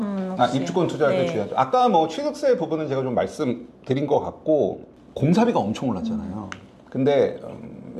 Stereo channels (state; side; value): identical; both; correlation 1.00